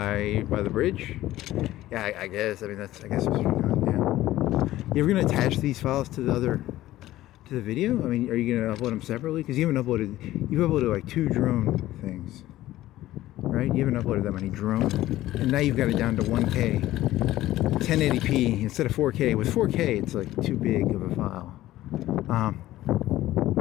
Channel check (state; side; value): quieter; right; 15.2 dB